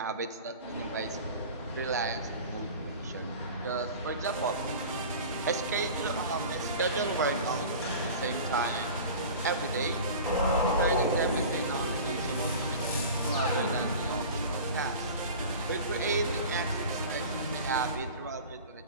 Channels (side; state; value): both; inverted; correlation -0.37